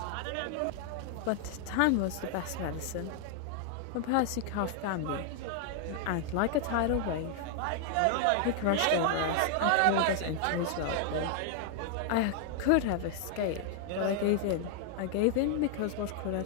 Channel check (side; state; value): both; different; correlation 0.00